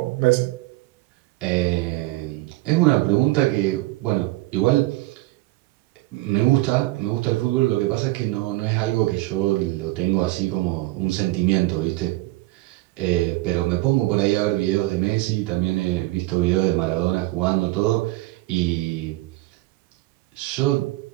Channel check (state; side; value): quieter; left; 19.2 dB